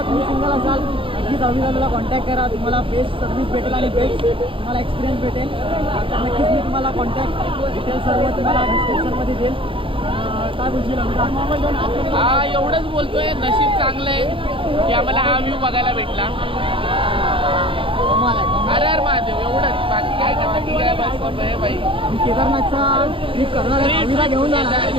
तुम्ही सिंगल असाल, नक्कीच अविदाला कॉन्टॅक्ट करा. तुम्हाला बेस्ट सर्व्हिस भेटेल आणि बेस्ट तुम्हाला एक्सपिरियन्स भेटेल. तर नक्कीच मी तुम्हाला कॉन्टॅक्ट डिटेल्स सर्व तुम्हाला डिस्क्रिप्शनमध्ये देईल. काय बोलशील अविदा? हा एवढंच बोलतोय, नशीब चांगलं आहे की आम्हाला हा व्ह्यू बघायला भेटला. अरे अरे महादेव, एवढंच, बाकी काय नाही. बाकी काय बस आहे बाई. मी केदारनाथचा ट्रिप करणार आहे, अविदा घेऊन जाणार.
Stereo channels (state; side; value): late; left; 0.25 ms